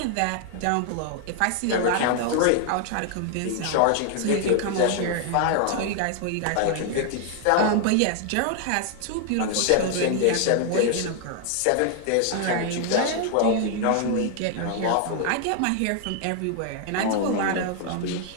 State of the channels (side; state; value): both; different; correlation 0.00